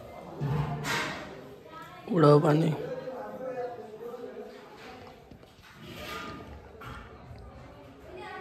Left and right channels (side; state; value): both; identical; correlation 1.00